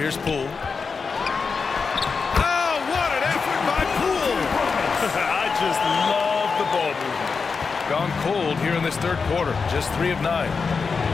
Poole. Oh, what an effort by Poole! I just love the ball movement. Gone cold here in this third quarter. Just 3 of 9.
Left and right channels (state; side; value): quieter; right; 5.1 dB